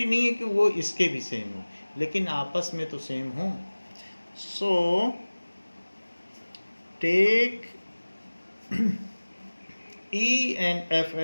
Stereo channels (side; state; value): both; inverted; correlation -1.00